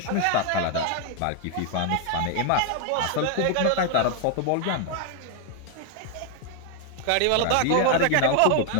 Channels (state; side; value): different; both; correlation 0.01